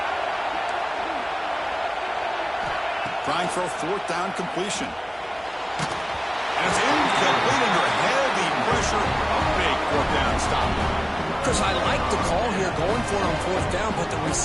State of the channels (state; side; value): identical; both; correlation 1.00